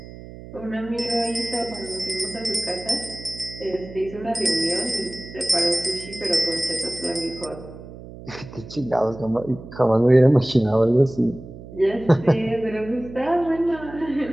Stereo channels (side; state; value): right; noise; hum, 15 dB below the sound